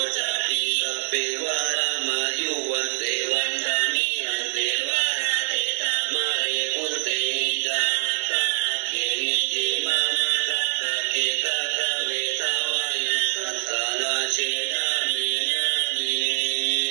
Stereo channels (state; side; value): silent; left; digital silence